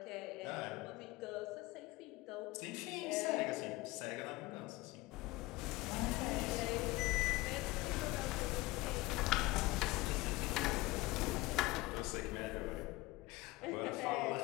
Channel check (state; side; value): quieter; right; 20.4 dB